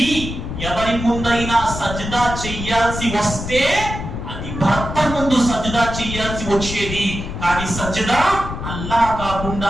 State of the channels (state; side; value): noise; left; rumble, 7 dB below the sound